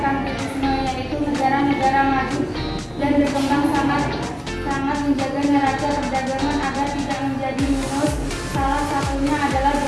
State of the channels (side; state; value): both; identical; correlation 1.00